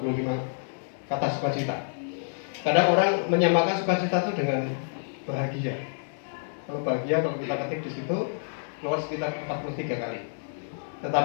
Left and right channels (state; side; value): silent; right; digital silence